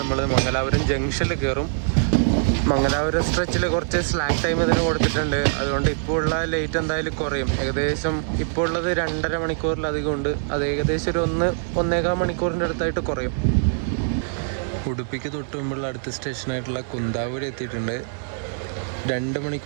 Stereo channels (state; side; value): silent; left; digital silence